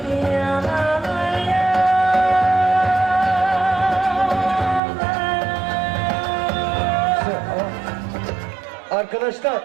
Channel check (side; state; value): left; drops out; at 4.8 s